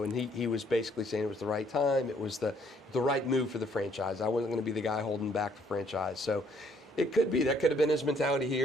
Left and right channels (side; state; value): both; normal; correlation 0.65